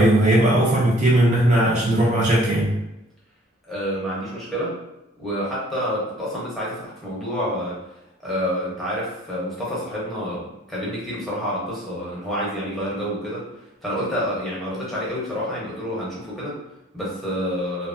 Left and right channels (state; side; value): normal; both; correlation 0.54